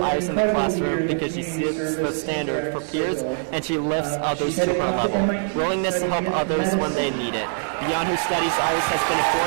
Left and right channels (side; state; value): left; silent; digital silence